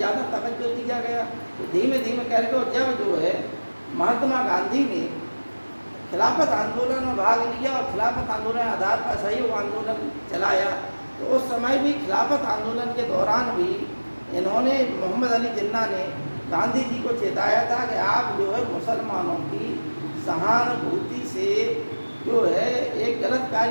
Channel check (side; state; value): both; inverted; correlation -1.00